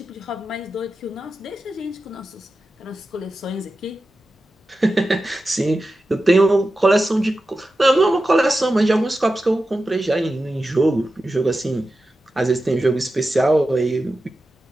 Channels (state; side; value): normal; both; correlation 0.92